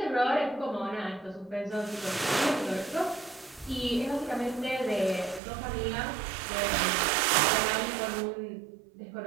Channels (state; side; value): drops out; left; at 5.4 s